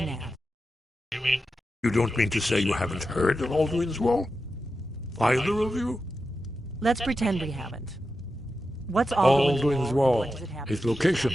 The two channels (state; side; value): normal; both; correlation 0.90